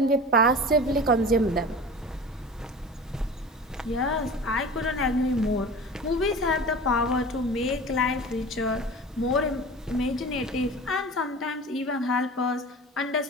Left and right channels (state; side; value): normal; both; correlation 0.35